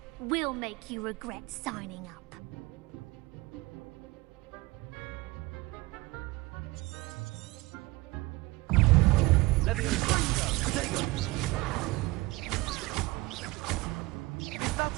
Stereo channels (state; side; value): quieter; left; 22.0 dB